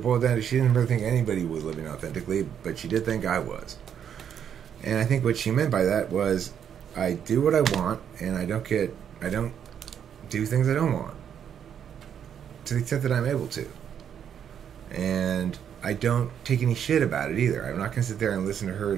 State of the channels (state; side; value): quieter; left; 8.6 dB